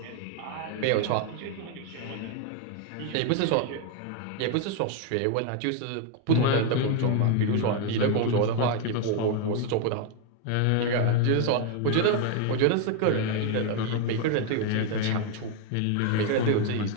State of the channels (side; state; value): both; different; correlation 0.01